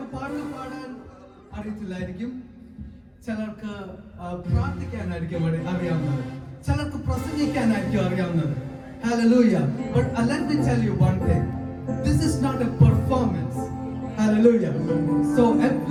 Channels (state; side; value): identical; both; correlation 1.00